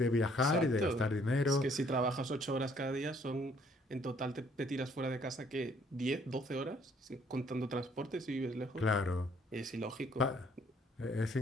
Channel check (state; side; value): normal; both; correlation 0.63